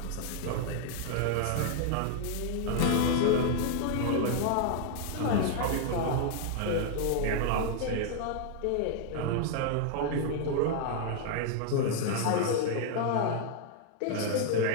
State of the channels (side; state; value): both; different; correlation 0.00